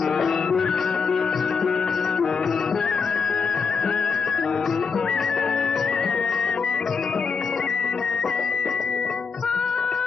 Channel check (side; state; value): right; quieter; 5.4 dB